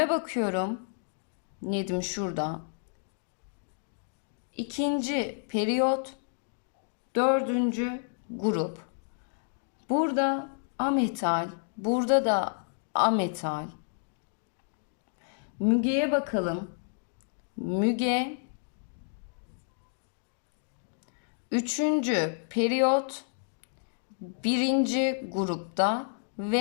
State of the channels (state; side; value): silent; right; digital silence